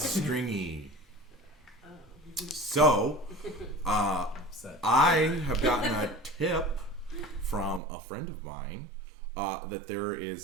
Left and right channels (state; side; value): drops out; left; at 7.8 s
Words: stringy. Oh. So, Upset. I have gotten a tip from a friend of mine that there